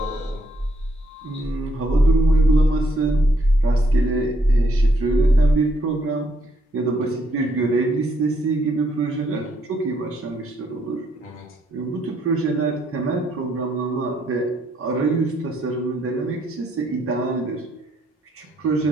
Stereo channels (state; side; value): normal; both; correlation 0.72